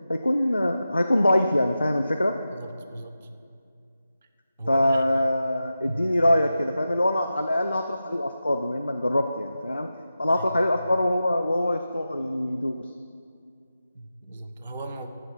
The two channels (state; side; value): inverted; both; correlation -0.92